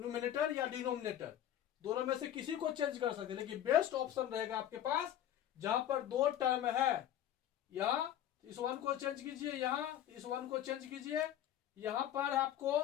या डिनोमिनेटर दोनों में से किसी को चेंज कर सकते हैं, लेकिन बेस्ट ऑप्शन रहेगा आपके पास जहां पर दो टर्म है, यहां इस 1 को चेंज कीजिए, यहां इस 1 को चेंज कीजिए, यहां पर आपको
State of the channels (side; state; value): right; quieter; 11.2 dB